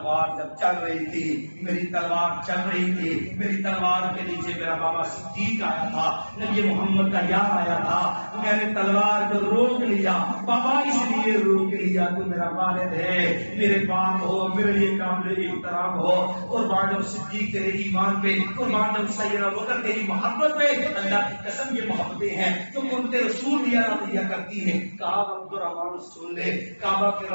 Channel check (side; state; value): both; inverted; correlation -1.00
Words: جب چل رہی تھی، میری تلوار چل رہی تھی، میری تلوار کے نیچے میرا بابا صدیق آیا تھا، نبی محمد کا یار آیا تھا، میں نے تلوار کو روک لیا، بابا اس لیے روک لیا تو میرا والد ہے، میرے باپ ہو، میرے لیے قابل احترام ہو، قربان جاؤ صدیق تیرے ایمان پہ، قربان جاؤ سیدنا بکر تیری محبت پہ، اللہ کی قسم یہ محبتیں ہیں جو قربت رسول دیا دیا کرتی ہیں۔ کہا عبد الرحمان سن لے، کعبہ کے